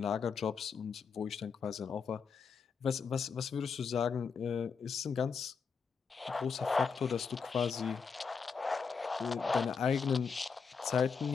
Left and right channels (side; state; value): right; quieter; 5.7 dB